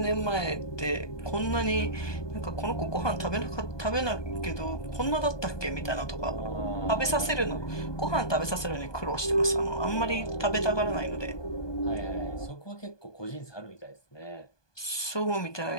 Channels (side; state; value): right; late; 1.2 ms